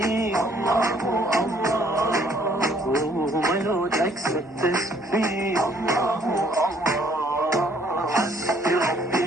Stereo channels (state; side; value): normal; both; correlation 0.63